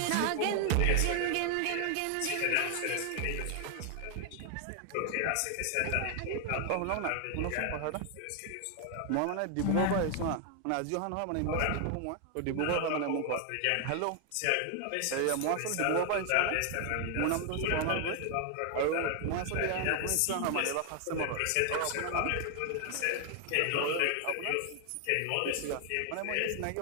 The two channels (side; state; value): both; different; correlation 0.00